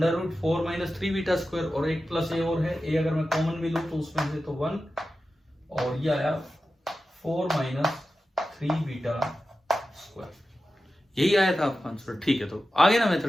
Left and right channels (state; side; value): normal; both; correlation 0.93